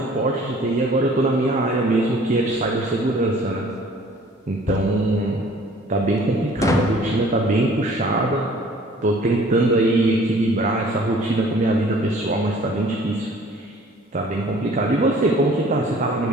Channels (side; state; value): both; normal; correlation 0.52